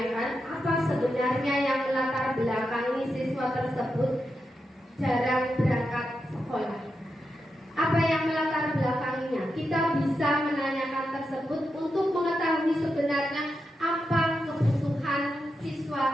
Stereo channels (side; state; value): both; normal; correlation 0.87